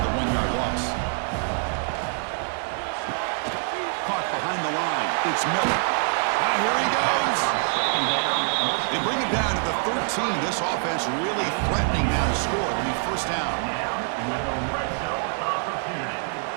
the 1-yard loss. Caught behind the line. It's Miller. Here he goes. They bring it down to the 13. This offense really threatening now to score. It'll be first down. With a red zone opportunity.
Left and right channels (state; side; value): silent; left; 57 dB below the other